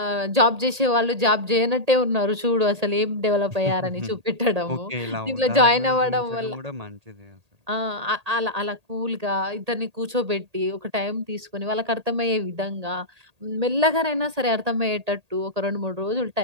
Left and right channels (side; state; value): left; late; 1.8 ms